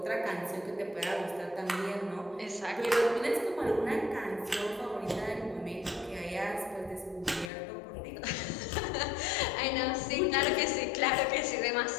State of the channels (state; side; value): drops out; right; at 7.5 s